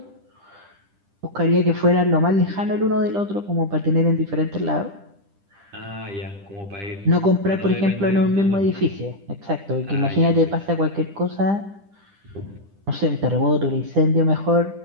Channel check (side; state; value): left; late; 10 ms